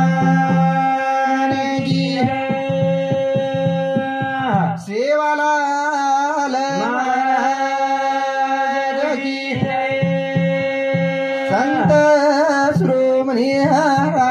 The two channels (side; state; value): both; identical; correlation 1.00